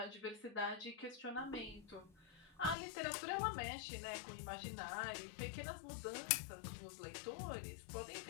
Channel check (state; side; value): drops out; right; at 2.8 s